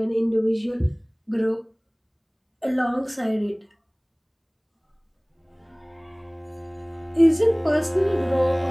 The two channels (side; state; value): both; identical; correlation 1.00